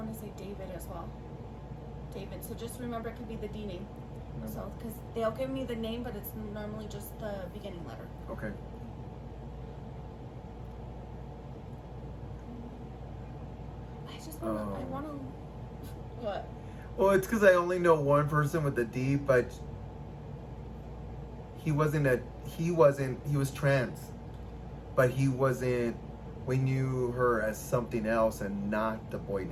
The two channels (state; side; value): identical; both; correlation 1.00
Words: to say David as well. David. So just remember, it could be the D name. No. So because they'll give me the name, but it's normally just the beginning letter. Okay. I just want to. I want to. What? Well, it's because I only know one person with a D, but he was trans, but he wasn't, we knew her as something else and not the boy